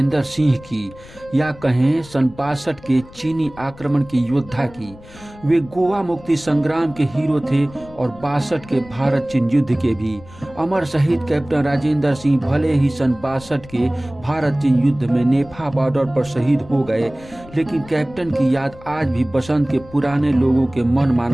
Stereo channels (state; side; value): noise; left; rumble, 20 dB below the sound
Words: सिंह की या कहें सन 62 के चीनी आक्रमण के योद्धा की। वे गोवा मुक्ति संग्राम के हीरो थे और 62 के भारत चीन युद्ध के भी। अमर शहीद कैप्टन राजेंद्र सिंह भले ही सन 62 के भारत चीन युद्ध में नेफा बॉर्डर पर शहीद हो गए, लेकिन कैप्टन की याद आज भी बसंत के पुराने लोगों के मन